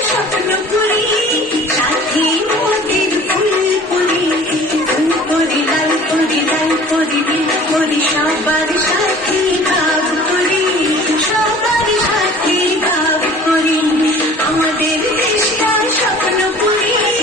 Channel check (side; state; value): both; normal; correlation 0.47